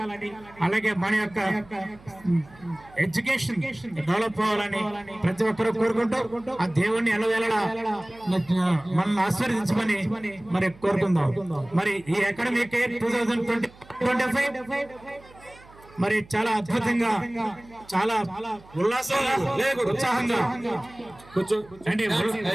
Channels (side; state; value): right; noise; hum, 24 dB below the sound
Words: అలాగే మన యొక్క ఎడ్యుకేషన్ డెవలప్ అవ్వాలని ప్రతి ఒక్కరూ కోరుకుంటూ ఆ దేవుణ్ణి ఎలవేళలా మనల్ని ఆశీర్వదించమని మరి కోరుకుందాం. మరి ఈ అకాడమిక్ 2025 మరి చాలా అద్భుతంగా, చాలా ఉల్లాసంగా, ఉత్సాహంగా